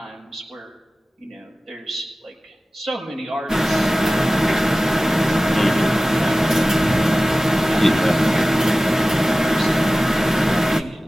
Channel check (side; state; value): both; normal; correlation 0.97